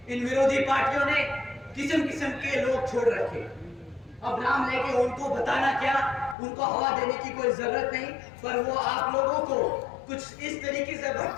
इन विरोधी पार्टियों ने किस्म के लोग छोड़ रखे। अब नाम लेके उनको बताना क्या, उनको हवा देने की कोई जरूरत नहीं, पर वो आप लोगों को कुछ इस तरीके से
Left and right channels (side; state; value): right; drops out; at 6.4 s